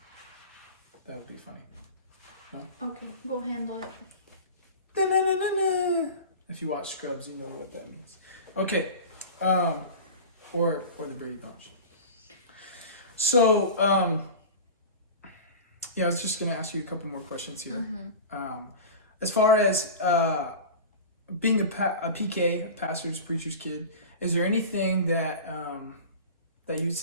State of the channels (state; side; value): inverted; both; correlation -0.32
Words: That would be funny. Okay, go handle it. Da-na-na-na-na. If you watch Scrubs, you know what that means. Okay. Or the Brady Bunch. So, I was just going to ask you a couple more questions here. As far as being a PK, a pastor's, preacher's kid, is there anything that that you'd